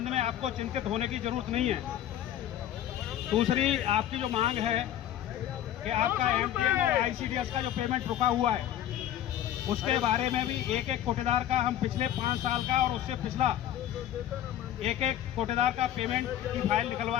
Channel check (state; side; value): quieter; right; 11.5 dB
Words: में आपको चिंतित होने की जरूरत नहीं है। दूसरी आपकी जो मांग है कि आपका एमटीएन और आईसीडीएस का जो पेमेंट रुका हुआ है उसके बारे में भी एक एक कोटेदार का हम पिछले 5 साल का और उससे पिछला एक एक कोटेदार का पेमेंट की फाइल